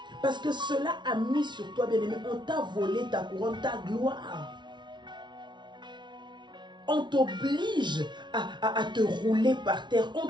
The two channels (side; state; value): left; late; 0.22 ms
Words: Parce que cela a mis sur toi, bien aimé, on t'a volé ta couronne, ta gloire. On t'oblige à te rouler par terre. On